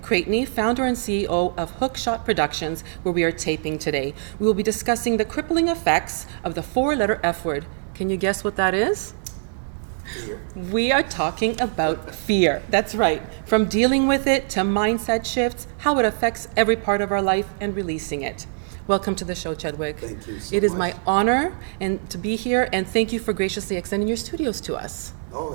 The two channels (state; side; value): silent; left; digital silence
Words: Creighton, founder and CEO of Hookshot Productions, where we are taping today. We will be discussing the crippling effects of the four-letter F word. Can you guess what that is? Fear. We are talking about fear. That's right. From dealing with it to mindset shifts, how it affects every part of our life, and releasing it. Welcome to the show, Chadwick. Thank you so It is much. my honor to be here, and thank you for graciously extending your studios to us. Oh,